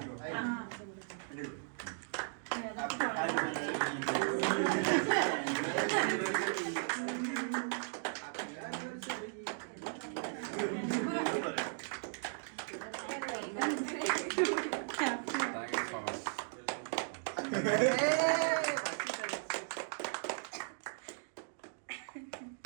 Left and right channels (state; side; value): silent; left; digital silence